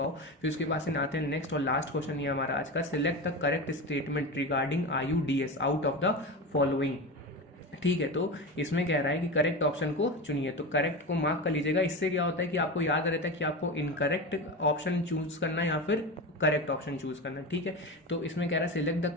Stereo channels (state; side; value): normal; both; correlation 0.24